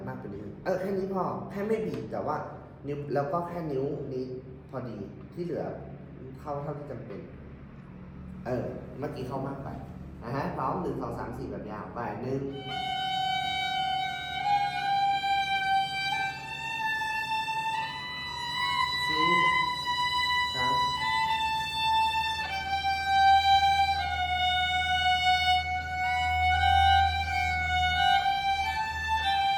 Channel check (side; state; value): both; identical; correlation 1.00